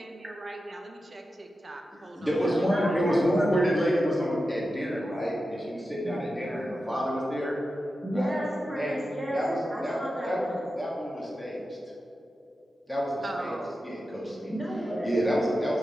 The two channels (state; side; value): normal; both; correlation 0.91